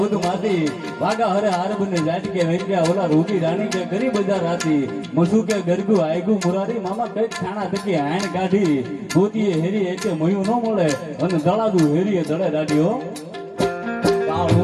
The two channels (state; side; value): identical; both; correlation 1.00